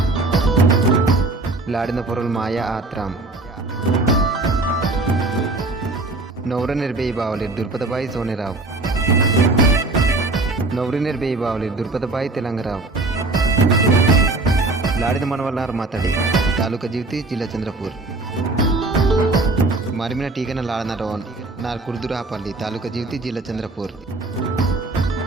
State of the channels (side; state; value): left; quieter; 3.1 dB